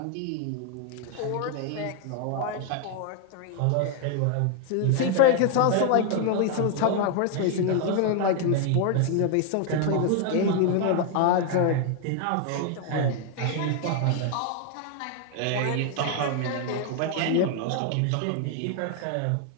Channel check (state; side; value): different; both; correlation 0.00